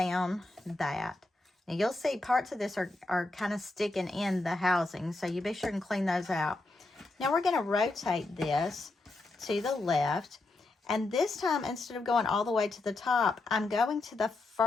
that. Now you'll see parts of this are kind of sticking in the housing, so you be sure and clean those out. Now we're going to rotate this to the left. And this time, instead of going all the way to the top, I'm going to the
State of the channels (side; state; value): right; quieter; 3.1 dB